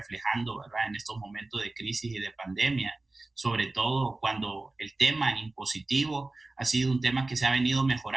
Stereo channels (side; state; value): left; quieter; 3.1 dB